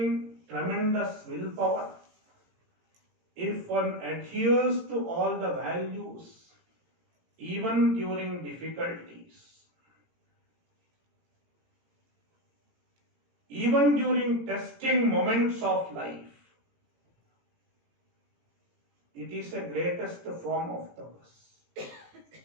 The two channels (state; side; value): late; left; 17 ms